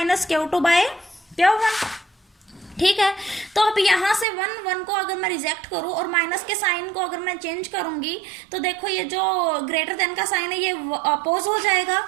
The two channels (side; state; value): left; drops out; at 4.2 s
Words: - Q2/Q1, ठीक है। तो अब यहाँ से 1 को अगर मैं रिजेक्ट करूँ और माइनस के साइन को अगर मैं चेंज करूंगी तो देखो ये जो ग्रेटर देन का साइन है ये अपोज हो जाएगा।